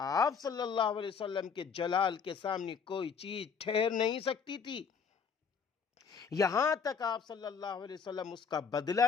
صلی اللہ علیہ وسلم کے جلال کے سامنے کوئی چیز ٹھہر نہیں سکتی تھی، یہاں تک آپ صلی اللہ علیہ وسلم اس کا بدلہ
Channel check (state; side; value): quieter; right; 6.2 dB